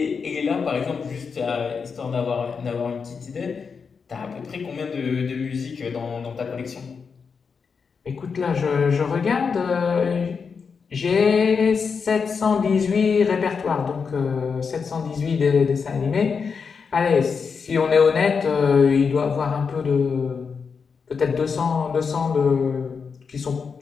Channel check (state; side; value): quieter; right; 5.6 dB